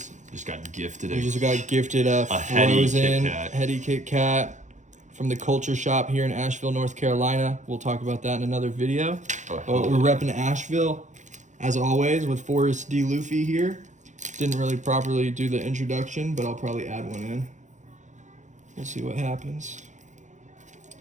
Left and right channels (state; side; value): late; left; 0.35 ms